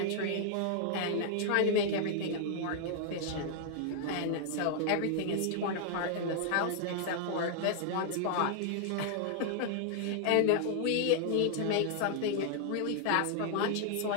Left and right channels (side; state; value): both; different; correlation 0.00